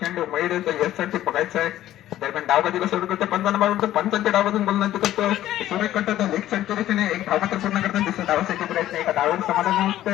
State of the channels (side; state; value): right; quieter; 13.4 dB